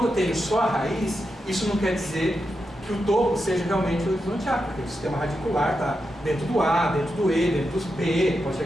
eu tenho só a raiz, isso não quer dizer que o topo seja realmente o horizonte A, porque o sistema radicular está dentro do A, dentro do E, dentro do B, pode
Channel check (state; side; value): normal; both; correlation 0.87